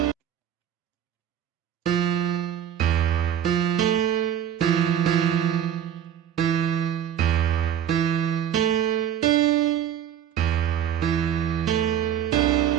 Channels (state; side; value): quieter; left; 9.7 dB